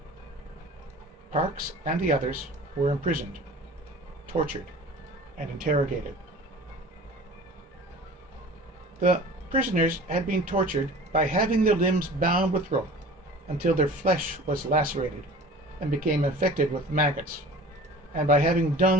Parkes and the others were imprisoned, tortured, and interrogated. The prisoners had been tortured by having their limbs bound with rope until their flesh was lacerated and became infected with maggots, and by having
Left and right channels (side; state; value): both; normal; correlation 0.42